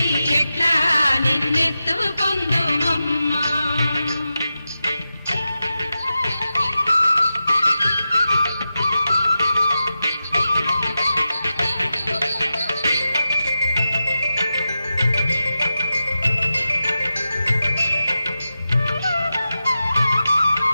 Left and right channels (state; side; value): inverted; both; correlation -0.91